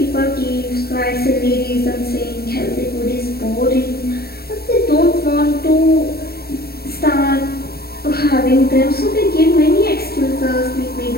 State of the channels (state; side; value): late; right; 0.45 ms